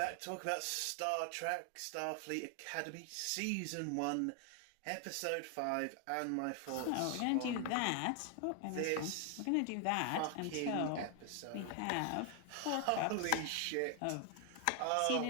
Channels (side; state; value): both; different; correlation 0.00